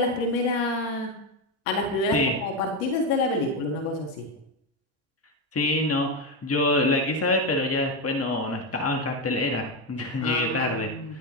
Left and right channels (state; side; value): normal; both; correlation 0.10